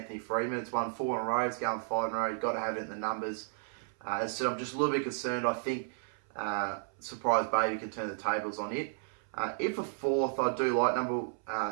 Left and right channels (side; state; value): left; silent; 56 dB below the other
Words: Freeman. It's won 4 in a row. It's going 5 in a row. You've got to have it in the numbers. As I said, I'm just a little bit concerned. I think Surprise Baby can turn the tables on it. In for fourth, I do like number